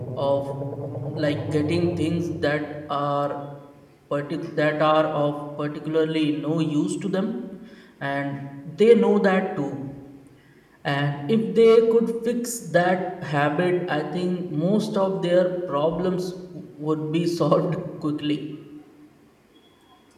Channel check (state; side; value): identical; both; correlation 1.00